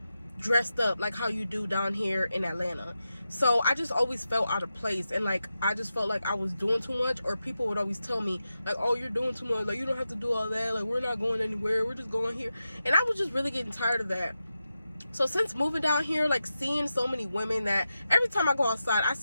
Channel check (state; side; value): inverted; both; correlation -0.90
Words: dressed up like how you do down here in Atlanta. So I just always felt out of place, and like I just felt like I was doing too much, or people would always tell me like, oh, you're doing too much, like you don't have to do all that, like we're not going anywhere, we're just going here. And I was just really getting tired of that. So since moving down here, like seeing so many women, that every time I go outside I